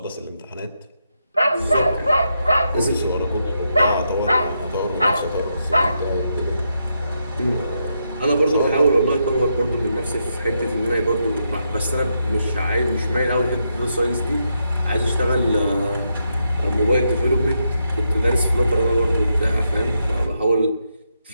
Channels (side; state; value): both; inverted; correlation -0.81